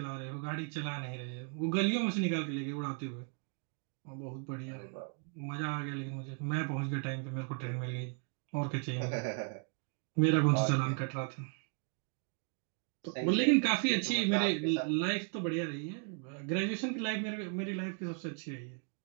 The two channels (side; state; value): left; quieter; 39.2 dB